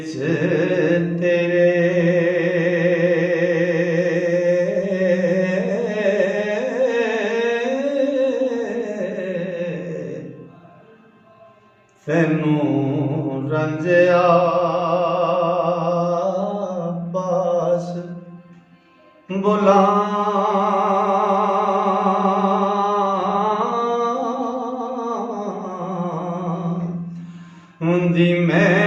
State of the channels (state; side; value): identical; both; correlation 1.00